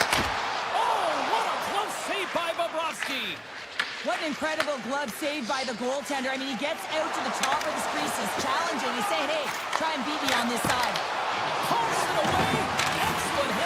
Oh, what a close save by Bobrovsky. What an incredible glove save by the goaltender. I mean, he gets out to the top of the crease, is challenging. He's saying, hey, try and beat me on this side. Pumps it away. Excellent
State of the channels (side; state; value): both; identical; correlation 1.00